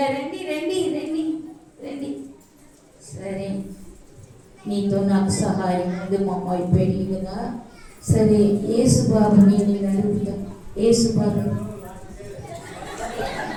రండి రండి రండి రండి. సరే, నీతో నాకు సహాయం ఉంది, మా అమ్మాయి పెళ్ళి కదా. సరే యేసుబాబుని నేను అడుగుతా. యేసుబాబు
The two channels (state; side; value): identical; both; correlation 1.00